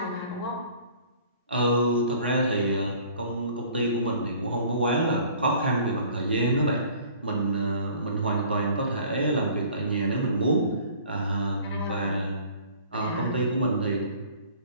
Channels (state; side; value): inverted; both; correlation -0.51